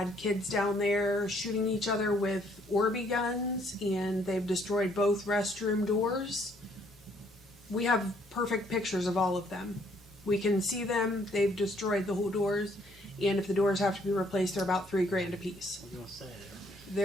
kids down there shooting each other with Orby guns, and they've destroyed both restroom doors. We have perfect pictures of all of them. We can see them. They've destroyed the whole doors, and if the doors have to be replaced, they're about $3,000 a piece. I was gonna say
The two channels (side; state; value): both; normal; correlation 0.66